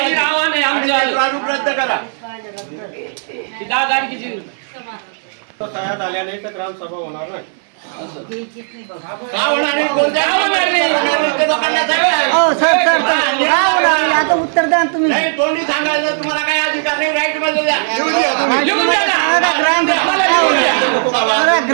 प्रारूप रद्द करा. सह्या झाल्या नाही तर ग्रामसभा होणार नाही. का होणार नाही? कोणत्या ते लोकांना सांगा. आता उत्तर द्या ना तुम्ही. नाही, तोंडी सांगायचं तुम्हाला काही अधिकार नाही. राईट मध्ये द्या.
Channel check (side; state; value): left; silent; digital silence